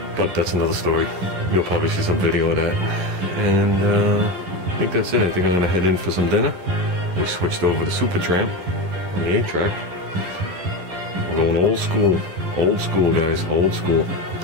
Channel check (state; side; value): late; left; 11 ms